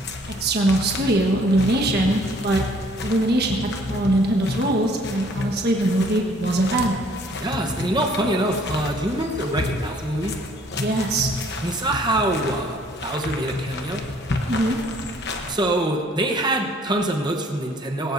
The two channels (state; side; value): normal; both; correlation 0.59